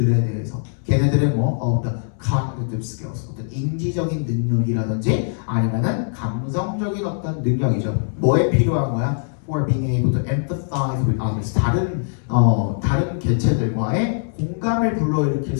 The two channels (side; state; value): right; silent; 65 dB below the other